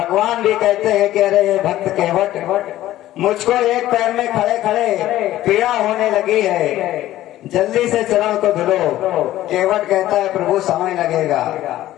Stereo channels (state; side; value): quieter; right; 14.4 dB